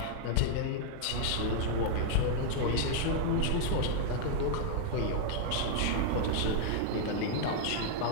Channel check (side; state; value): both; different; correlation -0.01